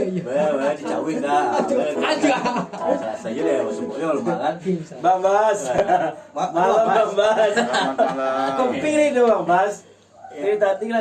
Dicawin dah. Aja. Saya deh semuanya rumah kan. Bang Bas. Malam Bang Bas. Kopi nih tuh Bang Bas. Ini tadi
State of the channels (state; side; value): identical; both; correlation 1.00